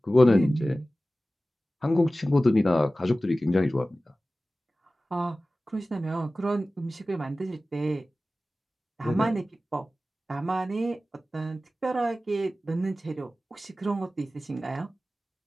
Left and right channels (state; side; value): normal; both; correlation 0.96